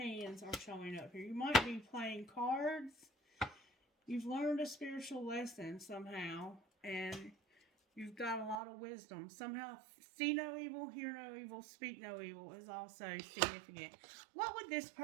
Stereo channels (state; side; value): drops out; left; at 8.6 s